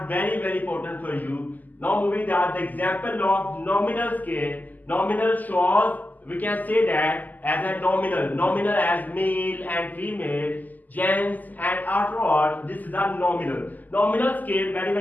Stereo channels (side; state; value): right; late; 0.082 ms